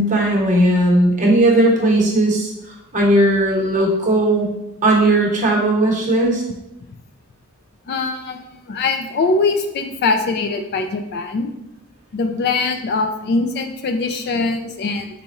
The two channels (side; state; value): both; normal; correlation 0.40